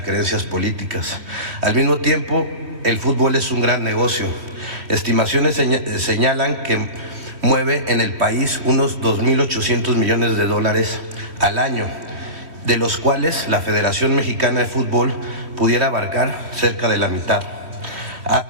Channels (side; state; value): left; late; 3.1 ms